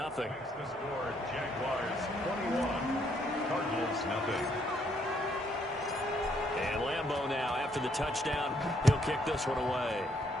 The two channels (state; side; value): normal; both; correlation 0.70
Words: score, Jaguars 21, Cardinals 0. And Lambeau now, after the touchdown, he'll kick this one away.